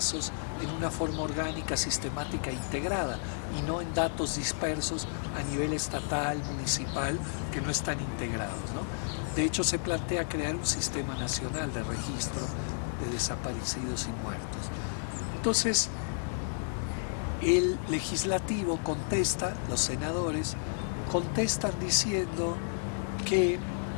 en una forma orgánica, sistemática e integrada, y no en datos dispersos a nivel estatal, municipal, que no están integrados, ¿no? De hecho, se plantea crear un Sistema Nacional de Registro de Desaparecidos y Muertos. Entonces, el legislativo contesta, los senadores contestan diciendo que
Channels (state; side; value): silent; right; 56 dB below the other